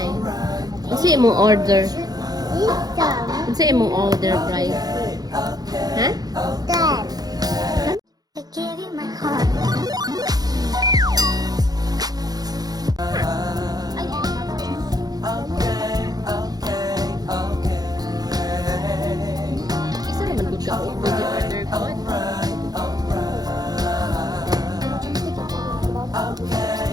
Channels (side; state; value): left; late; 0.19 ms